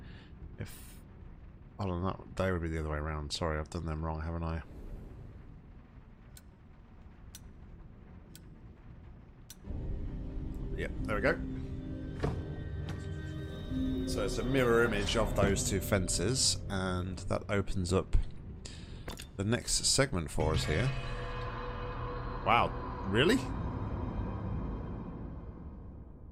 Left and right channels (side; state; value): both; identical; correlation 1.00